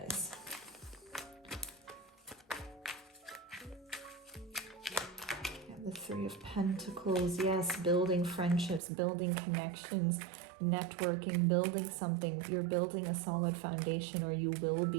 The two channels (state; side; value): drops out; left; at 8.8 s